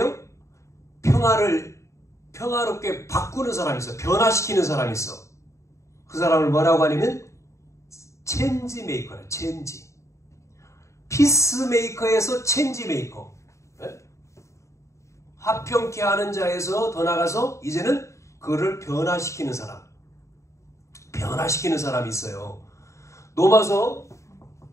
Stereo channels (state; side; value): late; right; 0.14 ms